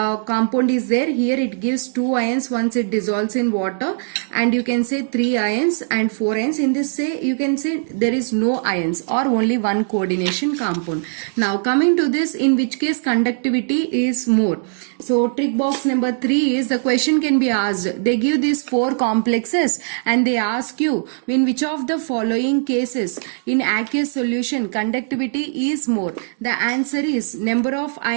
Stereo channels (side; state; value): left; silent; digital silence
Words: is there. Here it gives 2 ions once it dissolves in water, and you can say 3 ions and 4 ions. In this say you can say there is no ions or only one coordination compound. Now coming to this, in which case conductivity is more. So trick box number 3 is, the question can be asked. They give these 4 complexes and they ask you, in which of the following cases in aqueous solution conductivity is more. The answer is number of